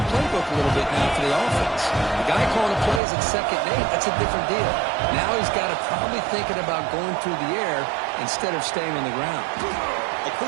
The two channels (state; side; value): drops out; left; at 3.0 s